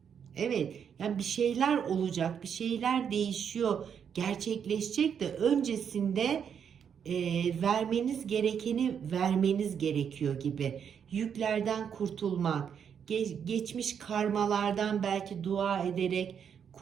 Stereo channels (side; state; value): left; quieter; 7.7 dB